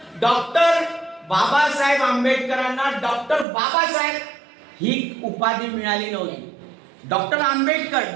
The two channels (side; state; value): left; drops out; at 3.5 s